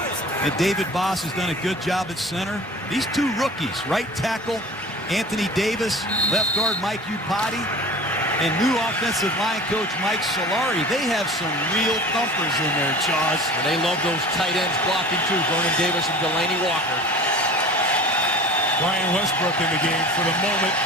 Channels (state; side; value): normal; both; correlation 0.40